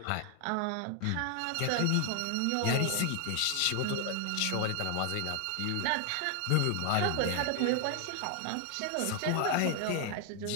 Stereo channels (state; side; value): different; both; correlation 0.00